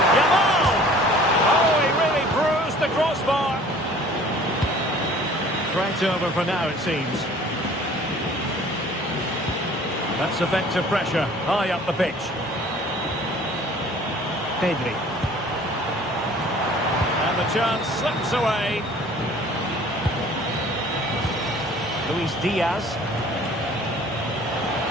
Yamal! Oh, he really threat over for now, it seems. That's effective pressure, high up the pitch. Pedri. And the chance slips away. Luis Diaz.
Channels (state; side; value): normal; both; correlation 0.50